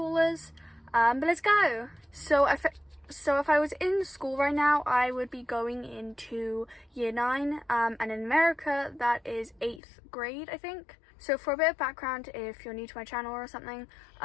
But let's go. So if I was in school right now, I would be going into year 9, and in America that is 8th grade, I think. So for a bit of background, if you're new to my channel or something,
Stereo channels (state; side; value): drops out; right; at 9.8 s